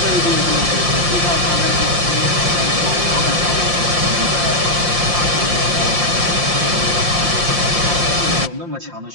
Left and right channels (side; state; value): left; late; 5.7 ms